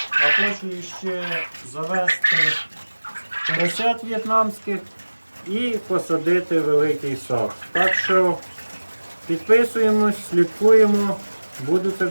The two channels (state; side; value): inverted; both; correlation -1.00